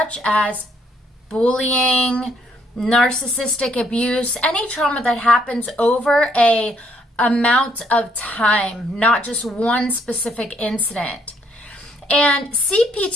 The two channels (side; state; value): both; normal; correlation 0.69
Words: as bullying, narcissistic abuse, any trauma that happens over a amount of time, not just one specific incident. And